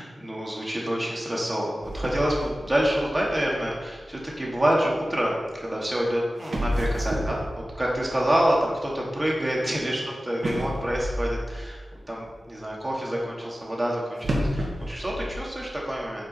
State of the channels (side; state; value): both; normal; correlation 0.95